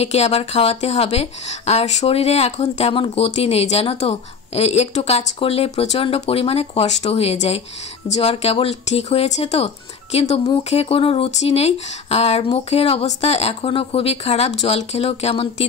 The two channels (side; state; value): right; quieter; 5.7 dB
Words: আবার খাওয়াতে হবে। আর শরীরে এখন তেমন গতি নেই জানো তো, একটু কাজ করলে প্রচণ্ড পরিমাণে কষ্ট হয়ে যায়। জ্বর কেবল ঠিক হয়েছে তো, কিন্তু মুখে কোনো রুচি নেই আর মুখের অবস্থা এখনও খুবই খারাপ, জল খেলেও কেমন